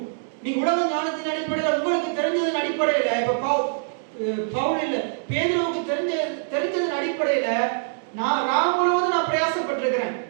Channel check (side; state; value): left; silent; digital silence